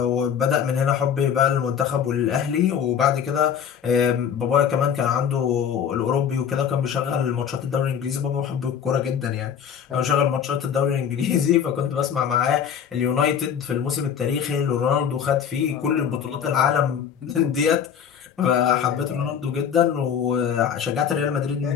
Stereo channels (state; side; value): quieter; right; 8.1 dB